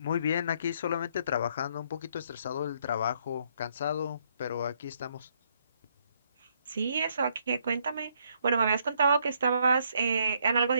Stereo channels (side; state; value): both; inverted; correlation -0.70